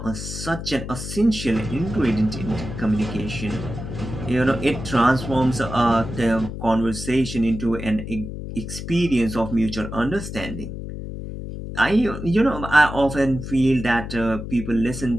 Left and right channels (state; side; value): noise; left; hum, 8 dB below the sound